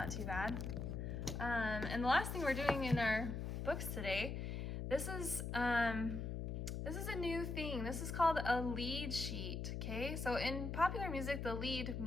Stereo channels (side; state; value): left; noise; hum, 3 dB below the sound